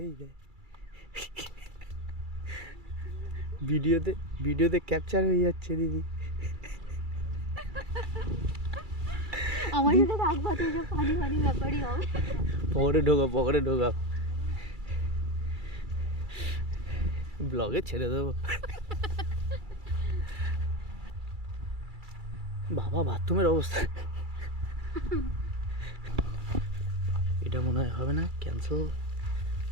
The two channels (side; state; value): left; late; 2.3 ms